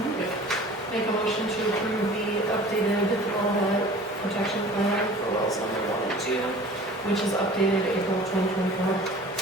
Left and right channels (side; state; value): both; normal; correlation 0.44